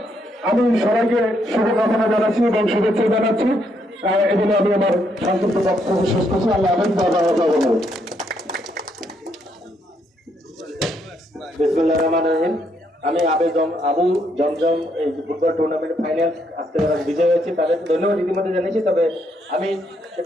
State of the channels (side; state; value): both; normal; correlation 0.74